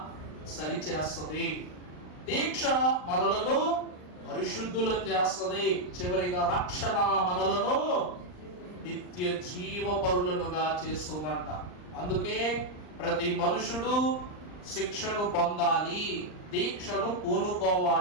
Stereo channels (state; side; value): late; right; 39 ms